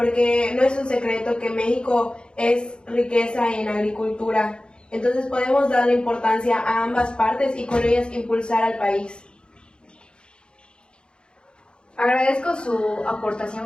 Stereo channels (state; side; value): late; right; 0.052 ms